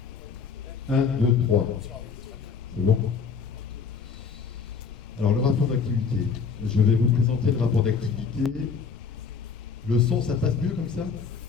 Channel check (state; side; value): quieter; right; 5.7 dB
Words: 1, 2, 3. C'est bon? Alors, le rapport d'activité. Je vais vous présenter le rapport d'activité. Le son, ça passe mieux comme ça?